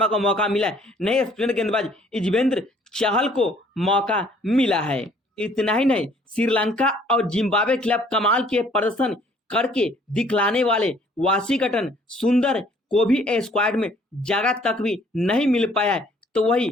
को मौका मिला है, नहीं स्पिनर गेंदबाज युजवेंद्र चहल को मौका मिला है। इतना ही नहीं, श्रीलंका और जिम्बाब्वे के खिलाफ कमाल के प्रदर्शन करके दिखलाने वाले वाशिंगटन सुंदर को भी स्क्वाड में जगह तक भी नहीं मिल पाया है, तो वही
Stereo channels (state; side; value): normal; both; correlation 0.59